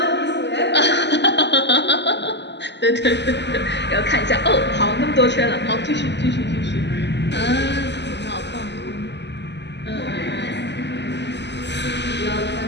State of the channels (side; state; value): right; late; 0.51 ms